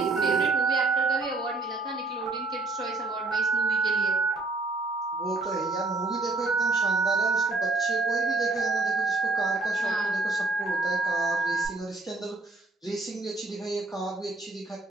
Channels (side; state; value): left; quieter; 3.4 dB